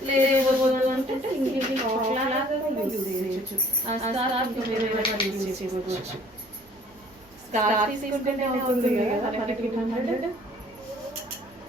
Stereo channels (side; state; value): both; normal; correlation 0.55